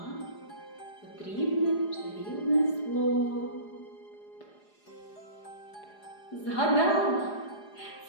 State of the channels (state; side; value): late; right; 4.9 ms